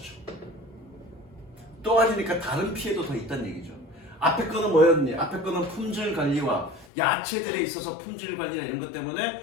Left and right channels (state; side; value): drops out; right; at 6.9 s